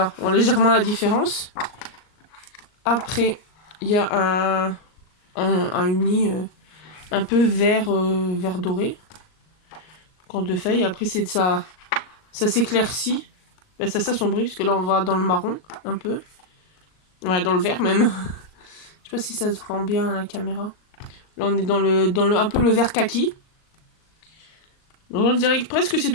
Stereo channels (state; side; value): late; right; 38 ms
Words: on voit légèrement la différence. Après, il y a un uni un peu vert doré. Donc en 2 feuilles. Après c'est de ça s'éclaircit. Ben, ça s'assombrit parce que là on va dans le marron un peu. Ouais, dans le vert même. Je sais pas si ça se rend bien à la caméra. Là on est dans le un peu le vert kaki. Donc on dirait que presque c'est